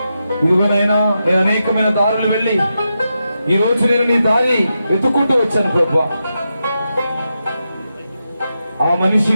ఇదిగోనైనా నేను అనేకమైన దారులు వెళ్ళి ఈ రోజు నేను నీ దారి వెతుక్కుంటూ వచ్చాను ప్రభు. ఆ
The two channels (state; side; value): inverted; both; correlation -0.87